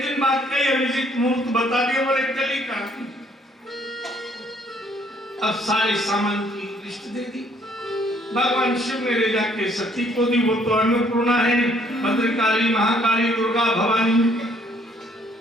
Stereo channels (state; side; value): normal; both; correlation 0.64